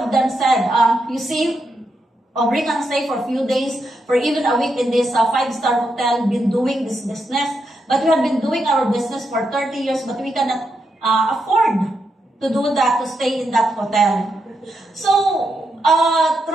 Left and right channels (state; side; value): normal; both; correlation 0.83